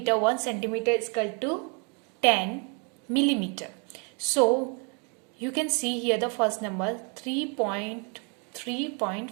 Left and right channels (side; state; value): left; quieter; 36.1 dB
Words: 1 centimeter is equal to 10 millimeter. So you can see here the first number